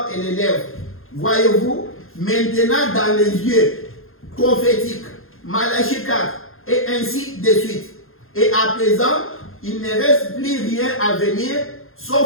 et les lèvres. Voyez-vous, maintenant dans les yeux prophétiques, Malachie 4, et ainsi de suite. Et à présent, il ne reste plus rien à venir,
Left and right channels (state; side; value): late; right; 0.61 ms